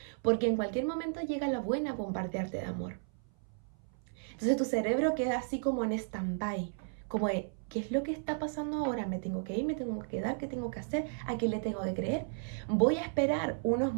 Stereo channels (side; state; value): left; silent; 55 dB below the other